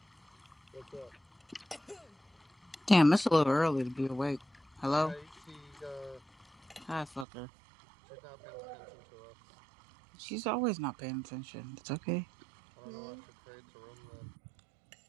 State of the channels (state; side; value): drops out; left; at 7.2 s